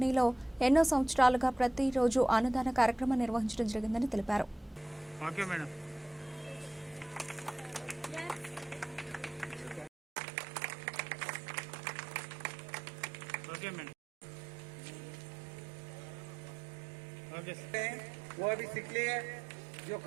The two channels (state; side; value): drops out; left; at 9.9 s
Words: ఎన్నో సంవత్సరాలుగా ప్రతిరోజు అన్నదాన కార్యక్రమం నిర్వహించడం జరిగిందని తెలిపారు. वो अभी सीख लिए, जो